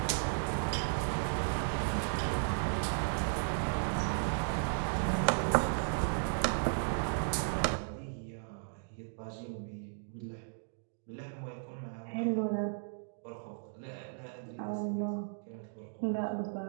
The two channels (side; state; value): left; silent; digital silence